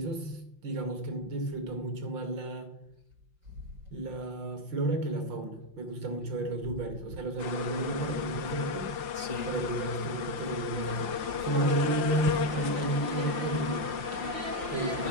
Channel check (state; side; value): late; left; 5.7 ms